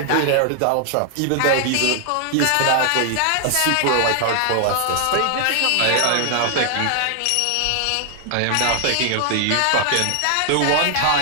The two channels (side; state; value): both; different; correlation 0.00